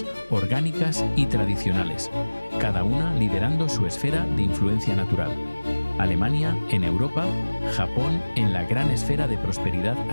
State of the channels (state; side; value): inverted; both; correlation -1.00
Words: orgánicas y tradicionales, cada una liderando su esfera de influencia natural. Alemania en Europa, Japón en la gran esfera de prosperidad